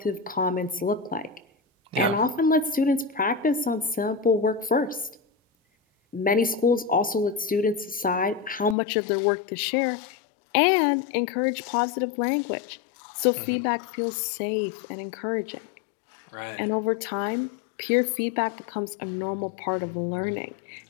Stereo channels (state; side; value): drops out; right; at 8.8 s